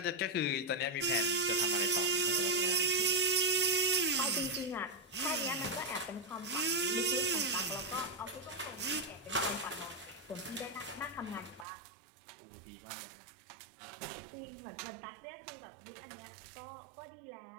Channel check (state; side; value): drops out; left; at 11.7 s